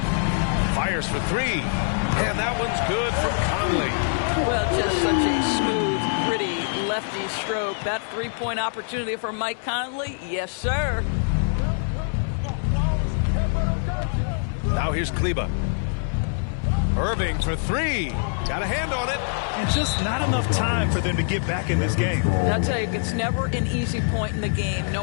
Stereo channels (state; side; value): silent; right; 62 dB below the other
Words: Fires for 3. And that one's good from Conley. Well, just such a smooth, pretty lefty stroke. That three-point opportunity for Mike Conley. Yes, sir. Now here's Kleba. Irving for 3. Got a hand on it. And just not enough time for them to get back in this game. I'll tell you, it's never an easy point in the game,